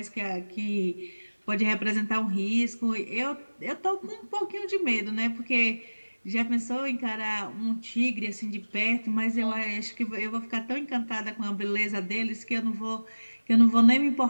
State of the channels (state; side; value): inverted; both; correlation -1.00